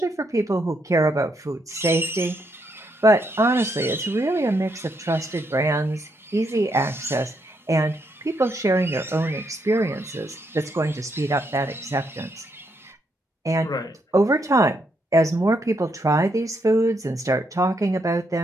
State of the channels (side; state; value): both; normal; correlation 0.77